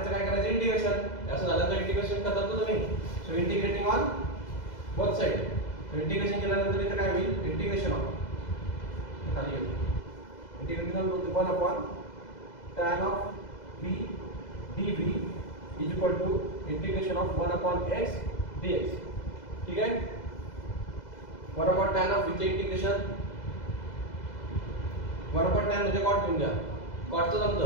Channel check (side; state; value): right; late; 2.0 ms